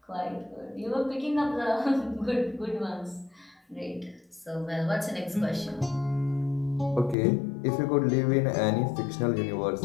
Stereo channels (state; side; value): drops out; right; at 7.2 s